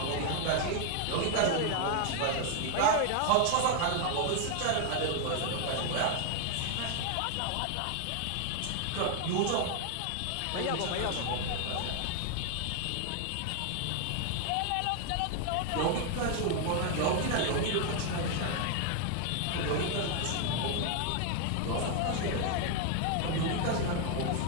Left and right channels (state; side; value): different; both; correlation 0.00